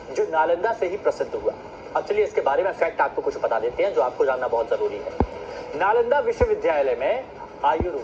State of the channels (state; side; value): identical; both; correlation 1.00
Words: जो नालंदा से ही प्रसिद्ध हुआ। अब चलिए इसके बारे में फैक्ट आपको कुछ बता देते हैं जो आपको जानना बहुत जरूरी है। नालंदा विश्वविद्यालय में